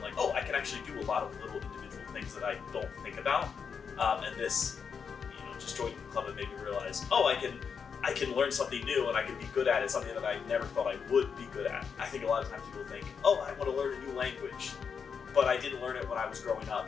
oh, I can actually do a lot of little individual things that I don't think about. And this, just joining the club, it made me realize, oh, I can learn something new and I can be good at it, something that I never thought I would be good at. I think a lot of times people think, oh, I want to learn a new language, but I didn't learn it when I was growing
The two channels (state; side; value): quieter; right; 6.4 dB